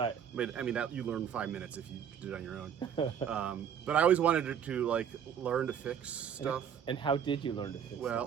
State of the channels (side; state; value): left; quieter; 8.4 dB